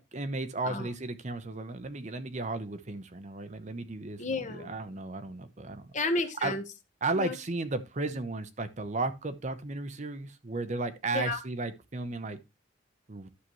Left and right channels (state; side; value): normal; both; correlation 0.21